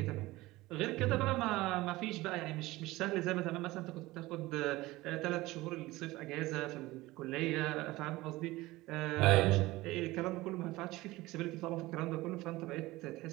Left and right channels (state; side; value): quieter; left; 19.2 dB